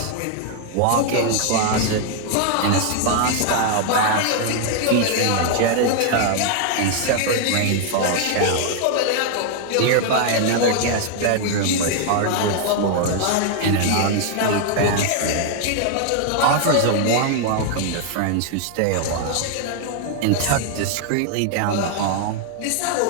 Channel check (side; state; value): both; different; correlation 0.00